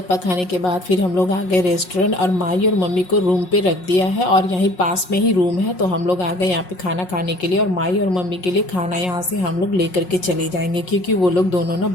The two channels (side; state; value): right; late; 5.5 ms